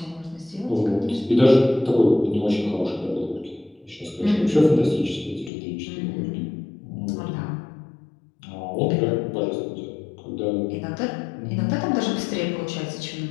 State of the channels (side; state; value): right; drops out; at 5.5 s